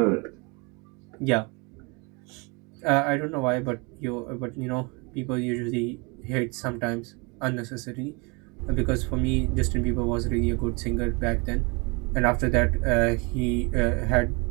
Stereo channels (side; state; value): left; quieter; 29.7 dB